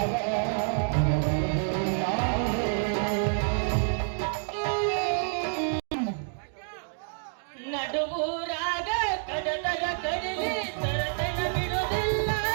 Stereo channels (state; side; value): silent; left; digital silence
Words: ನಡುವೂರಾಗ ಕಡದರ ಕಡಿಲಿ ತರತನ ಬಿಡುವುದಿಲ್ಲ,